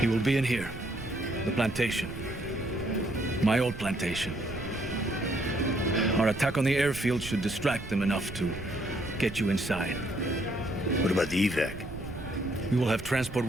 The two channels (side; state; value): right; noise; rumble, 12 dB below the sound